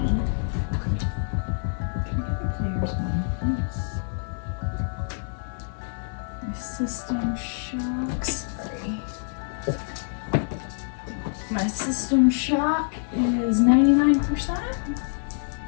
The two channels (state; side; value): silent; right; digital silence